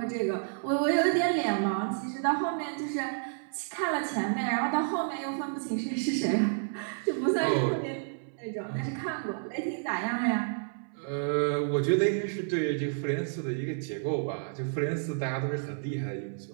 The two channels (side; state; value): left; silent; 58 dB below the other